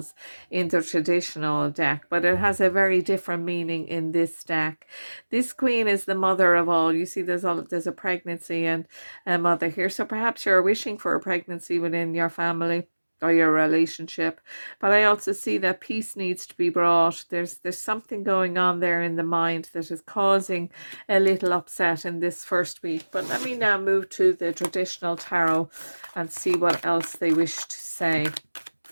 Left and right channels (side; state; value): both; inverted; correlation -1.00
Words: in the traditional deck, but it has a very different meaning in this deck. This queen is the mother of all. You see there's a pregnancy and a mother here, so perhaps you're wishing for a pregnancy within your family or your relationship, but I also see that peace needs to be brought. There's something going on there in the mind that is causing a little upset in this first week. But let me now move to the traditional tarot and see what else they wish to say.